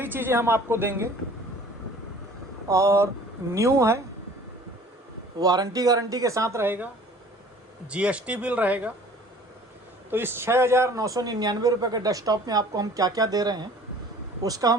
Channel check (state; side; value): normal; both; correlation 0.49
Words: चीज़ें हम आपको देंगे और न्यू है, वारंटी गारंटी के साथ रहेगा, जीएसटी बिल रहेगा। तो इस 6,999 रुपये के डेस्कटॉप में आपको हम क्या क्या दे रहे हैं, उसका